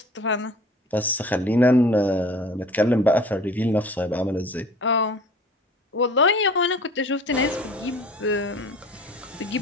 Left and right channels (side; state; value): both; normal; correlation 0.45